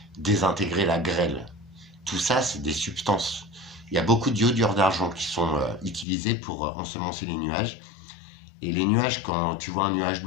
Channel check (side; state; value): right; drops out; at 6.1 s